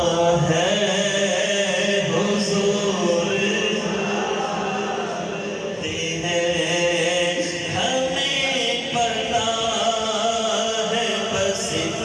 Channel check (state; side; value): identical; both; correlation 1.00